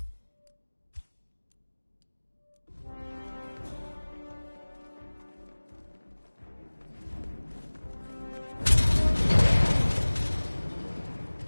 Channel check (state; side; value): inverted; both; correlation -1.00